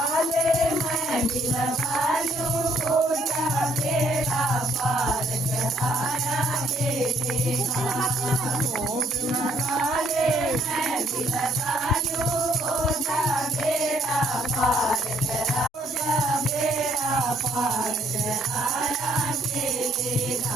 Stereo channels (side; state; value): both; normal; correlation 0.66